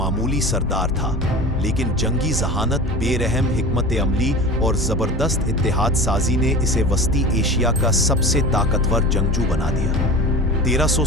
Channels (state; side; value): normal; both; correlation 0.34